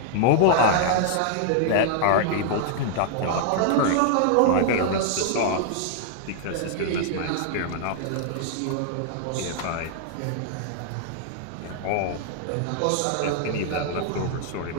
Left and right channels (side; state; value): both; different; correlation -0.01